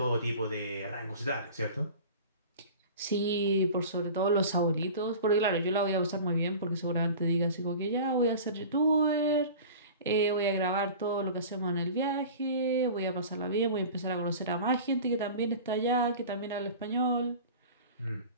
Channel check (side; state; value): both; inverted; correlation -0.38